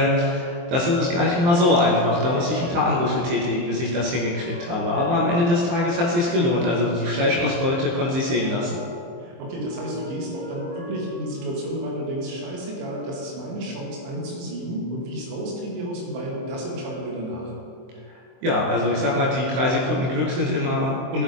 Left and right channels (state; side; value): late; left; 23 ms